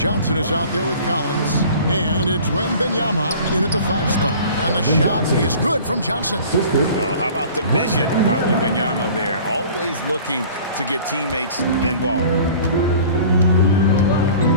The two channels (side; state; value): both; inverted; correlation -0.46